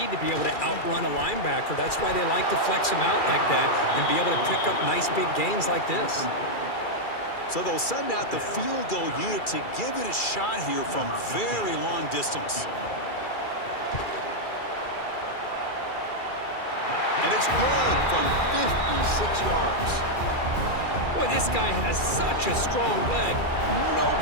to be able to outrun a linebacker. That's why they like to flex him out like that and be able to pick up nice big gains like this. So they'll send out the field goal unit to give it a shot here from very long distance. And it's good from 56 yards. Boy, this guy has such a strong leg. No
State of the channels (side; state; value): right; late; 2.4 ms